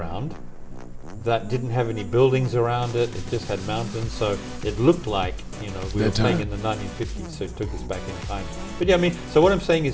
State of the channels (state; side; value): identical; both; correlation 1.00